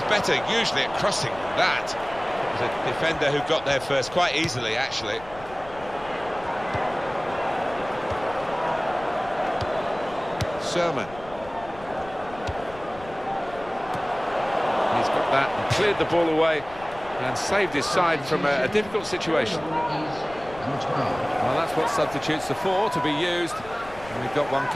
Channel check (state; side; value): noise; left; rumble, 18 dB below the sound